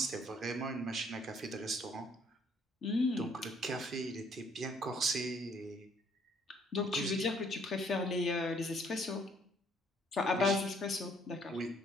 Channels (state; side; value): normal; both; correlation 0.64